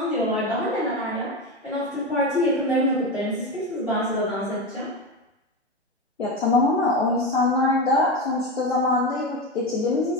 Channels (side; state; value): both; normal; correlation 0.18